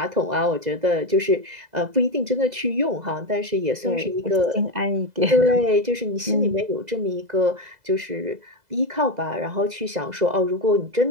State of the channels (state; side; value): late; left; 2.0 ms